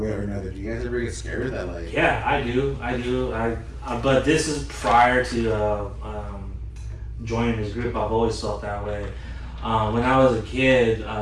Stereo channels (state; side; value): identical; both; correlation 1.00